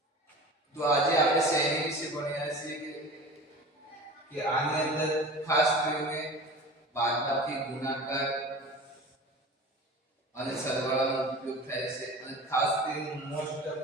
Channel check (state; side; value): normal; both; correlation 0.36